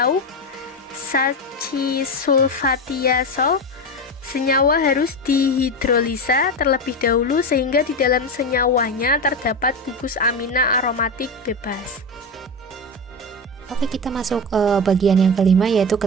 sachisulfatiazol, senyawa harus dihidrolisa terlebih dahulu sehingga di dalam senyawanya terdapat gugus amina aromatik bebas. Oke, kita masuk ke bagian yang kelima, yaitu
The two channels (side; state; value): both; normal; correlation 0.18